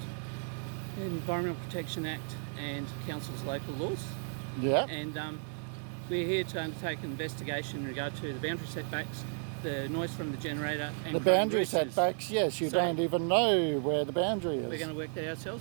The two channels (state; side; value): silent; left; 55 dB below the other